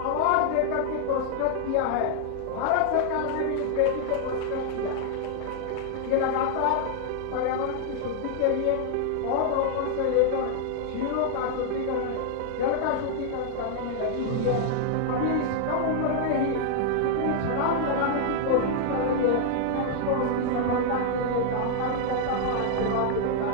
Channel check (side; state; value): both; different; correlation 0.00